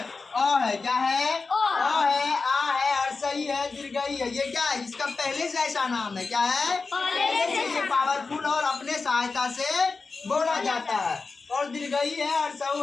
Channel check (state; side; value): quieter; right; 4.3 dB